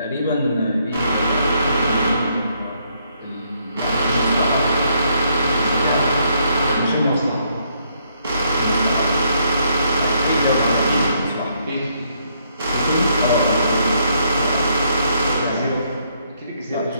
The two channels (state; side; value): inverted; both; correlation -0.72